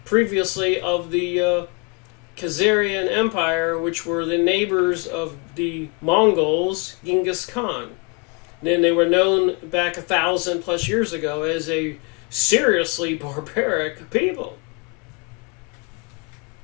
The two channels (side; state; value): right; quieter; 33.0 dB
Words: previously of the Khazarian Empire, which were the neighbors of the Mongols, Genghis Khan. And then they were known back 1,000+ years ago as a seriously barbaric people.